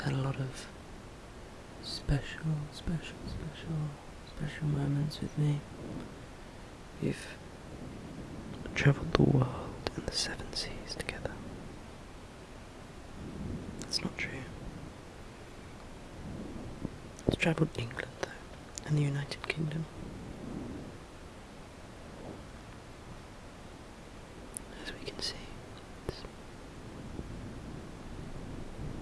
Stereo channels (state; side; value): identical; both; correlation 1.00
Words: a lot of special moments with me. We've travelled the world and the 7 seas together. That's not true. It's travelled England though, and the United Kingdom. As we can see, it's